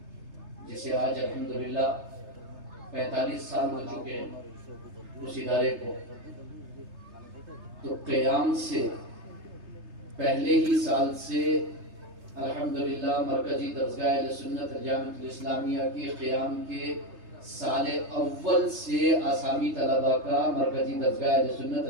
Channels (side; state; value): left; late; 3.3 ms